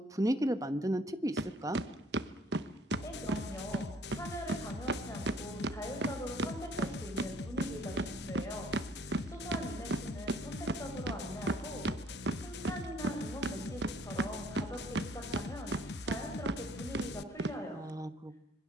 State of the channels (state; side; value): normal; both; correlation 0.59